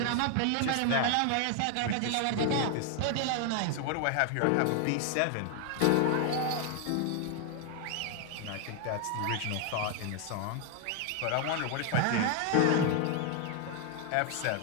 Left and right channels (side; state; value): both; different; correlation 0.00